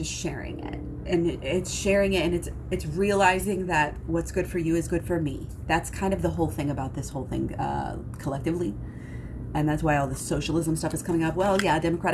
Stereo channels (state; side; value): identical; both; correlation 1.00